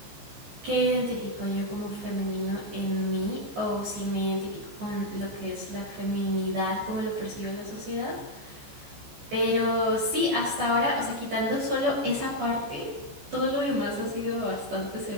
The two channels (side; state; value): left; late; 14 ms